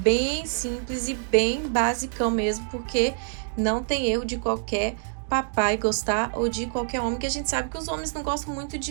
simples e bem basicão mesmo, porque não tem erro de qualquer papai gostar, ou de qualquer homem, que a gente sabe que os homens não gostam muito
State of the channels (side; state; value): left; silent; 61 dB below the other